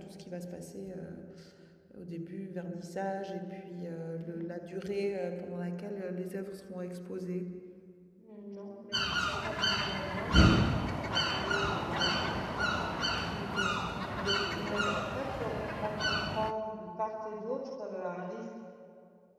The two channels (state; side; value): identical; both; correlation 1.00